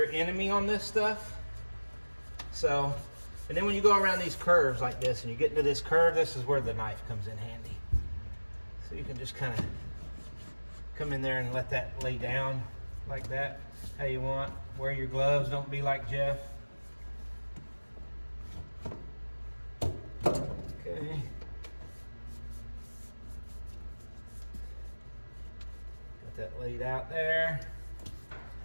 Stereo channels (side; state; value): both; inverted; correlation -1.00